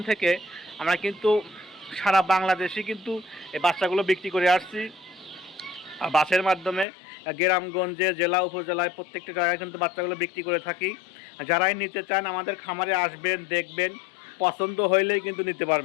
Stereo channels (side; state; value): right; drops out; at 6.9 s